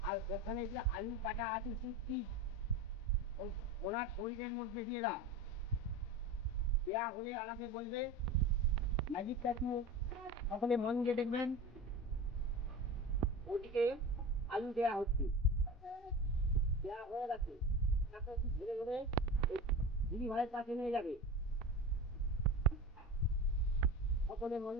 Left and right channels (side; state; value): both; normal; correlation 0.29